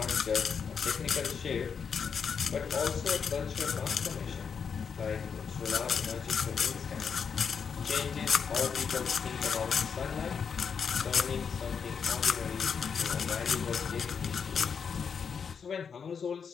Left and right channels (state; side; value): quieter; right; 6.5 dB